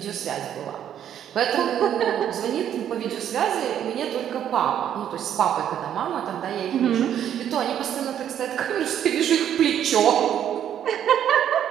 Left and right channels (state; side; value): quieter; left; 9.9 dB